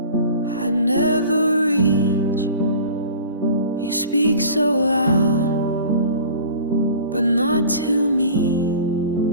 I never reach. You speak so loud, but not to me.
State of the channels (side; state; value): both; inverted; correlation -0.41